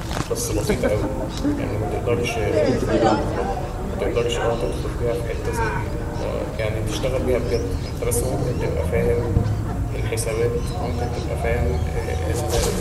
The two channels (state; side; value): identical; both; correlation 1.00